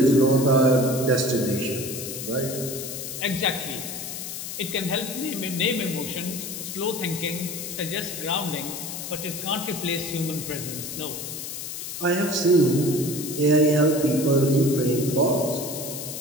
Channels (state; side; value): noise; left; hiss, 7 dB below the sound